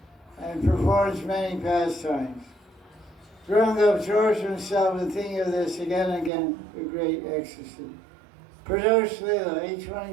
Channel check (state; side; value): drops out; left; at 6.3 s